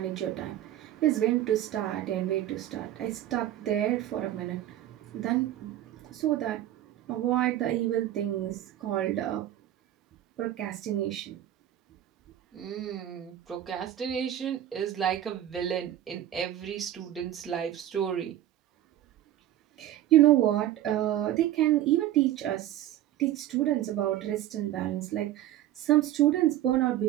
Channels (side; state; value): left; quieter; 12.6 dB